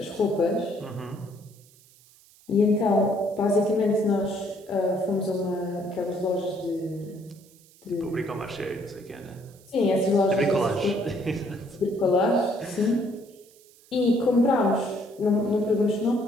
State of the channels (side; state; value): right; noise; hiss, 27 dB below the sound